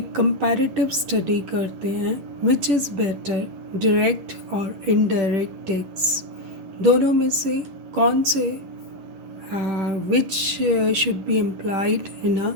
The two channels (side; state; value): left; late; 11 ms